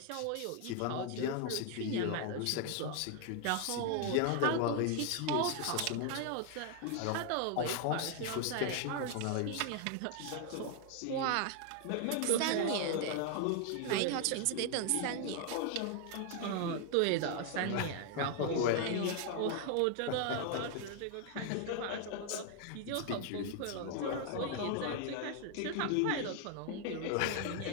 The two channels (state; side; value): different; both; correlation 0.00